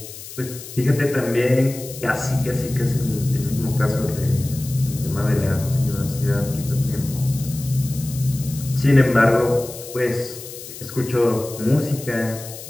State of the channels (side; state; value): left; noise; hiss, 13 dB below the sound